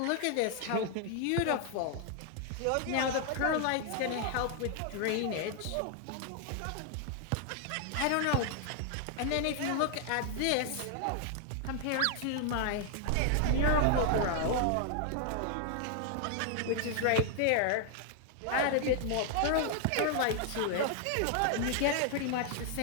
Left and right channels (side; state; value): both; different; correlation 0.00